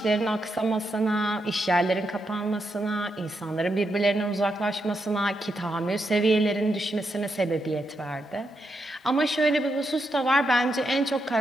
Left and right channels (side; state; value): both; normal; correlation 0.83